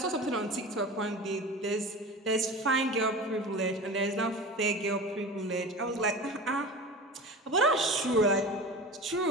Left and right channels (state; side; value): normal; both; correlation 0.33